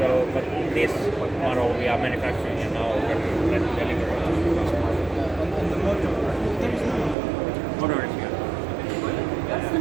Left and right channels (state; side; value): drops out; left; at 7.2 s